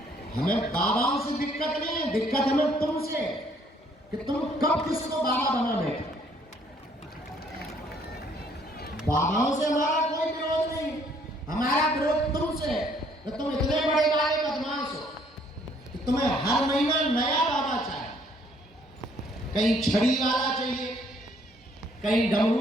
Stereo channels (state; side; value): normal; both; correlation 0.64